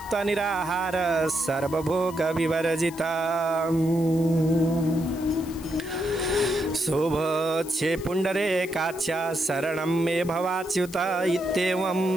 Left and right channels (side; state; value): left; noise; hiss, 18 dB below the sound